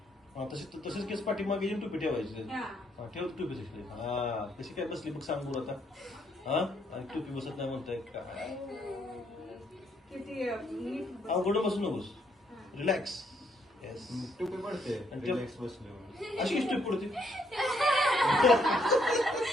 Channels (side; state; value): both; normal; correlation 0.71